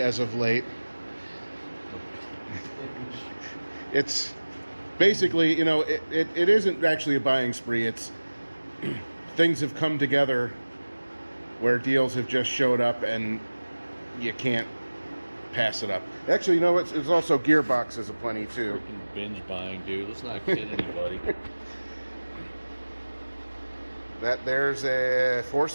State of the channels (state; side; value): inverted; both; correlation -1.00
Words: of late. It's basically, it isn't actually a buying spree. It's things have come together where deals have just showed up and you can't pass it up. Actually, it's also gearboxes aplenty too. Freaking binge buying, dude. Let's not kid anybody. There's a